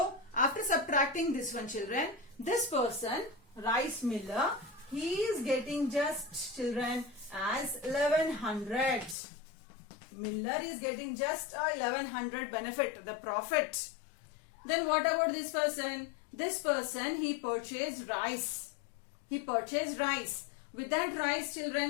after subtracting this one, children, this person, rice miller, he is getting just, children, as 1,100. Miller is getting just 1,100 benefit, the profit. Then what about this person? This person, he purchased rice. He purchased rice. With that rice,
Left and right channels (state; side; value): drops out; right; at 9.2 s